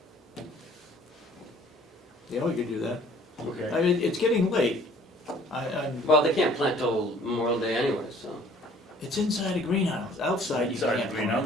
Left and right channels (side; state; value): both; normal; correlation 0.55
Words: yeah, we could do that. okay. I mean, it's getting late. I'm, Well, they can't plant till Memorial Day anyway, so. it's inside a greenhouse, outside you Inside can't the